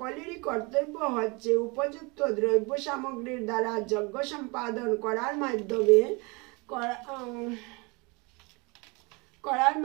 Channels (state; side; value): quieter; left; 28.3 dB